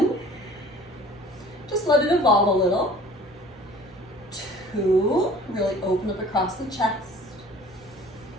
just let it evolve a little. 2, really open up across the chest.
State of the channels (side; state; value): both; normal; correlation 0.48